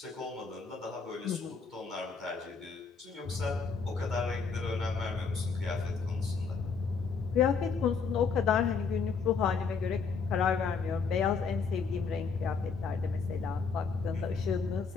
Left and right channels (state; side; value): quieter; right; 5.3 dB